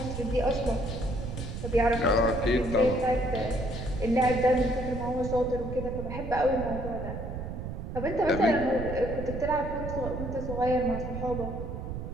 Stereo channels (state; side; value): noise; right; rumble, 6 dB below the sound